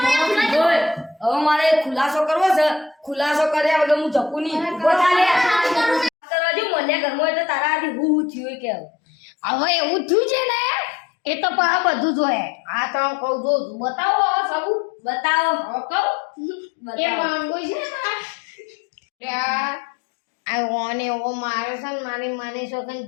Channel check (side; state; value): right; drops out; at 6.1 s